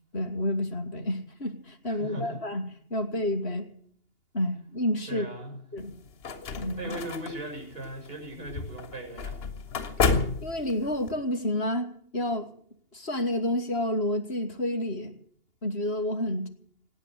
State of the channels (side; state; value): right; late; 2.8 ms